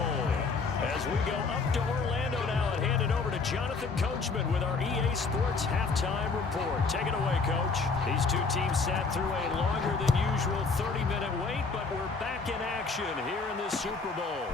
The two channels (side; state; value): right; quieter; 4.5 dB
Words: As we go up to Orlando now and hand it over to Jonathan Coachman with our EA Sports Halftime Report. Take it away, Coach. These two teams sat through a longer than usual 30-minute wait, but we're back in action here in the Super Bowl.